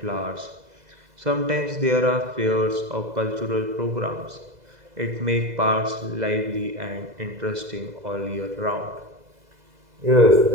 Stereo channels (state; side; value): late; left; 2.0 ms